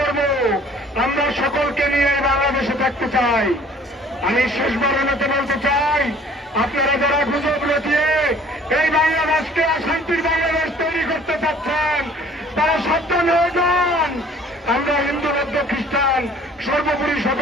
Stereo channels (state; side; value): normal; both; correlation 0.54